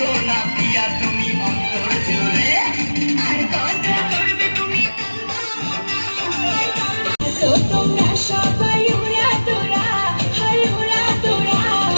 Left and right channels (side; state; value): both; inverted; correlation -1.00